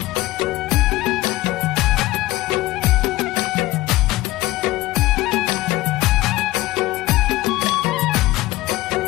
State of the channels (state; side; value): quieter; right; 18.2 dB